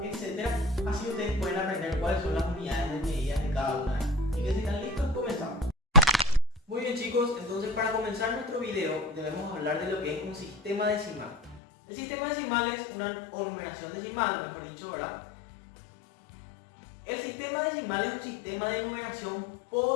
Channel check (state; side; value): drops out; right; at 11.6 s